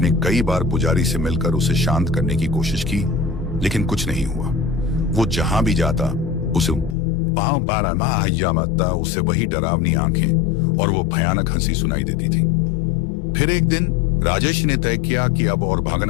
कई बार पुजारी से मिलकर उसे शांत करने की कोशिश की, लेकिन कुछ नहीं हुआ। वो जहां भी जाता उसे वही डरावनी आंखें और वो भयानक हंसी सुनाई देती थी। फिर एक दिन राजेश ने तय किया कि अब और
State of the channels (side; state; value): right; drops out; at 7.0 s